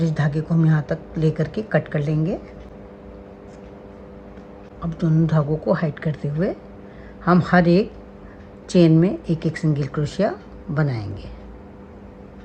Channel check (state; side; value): identical; both; correlation 1.00